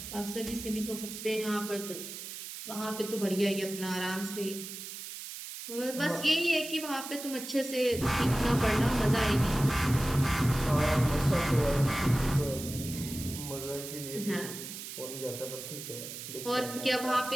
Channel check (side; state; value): right; noise; hiss, 10 dB below the sound